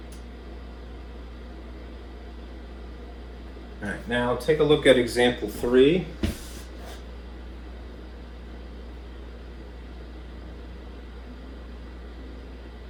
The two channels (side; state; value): both; identical; correlation 1.00